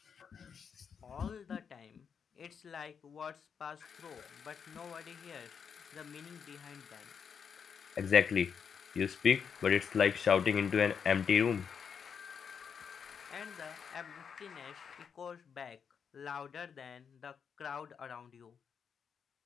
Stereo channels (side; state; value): right; quieter; 6.8 dB